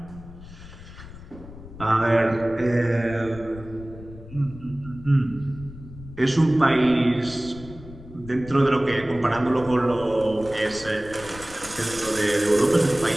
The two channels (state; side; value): noise; left; rumble, 16 dB below the sound